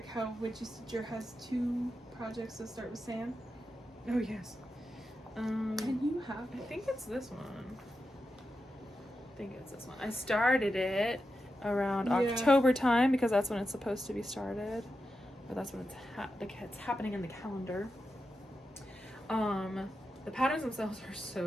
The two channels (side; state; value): both; normal; correlation 0.89